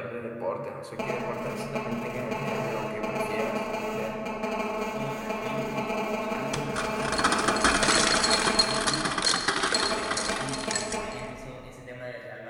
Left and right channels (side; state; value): both; identical; correlation 1.00